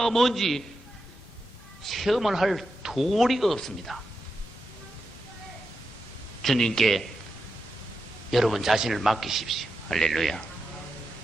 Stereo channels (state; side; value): normal; both; correlation 0.88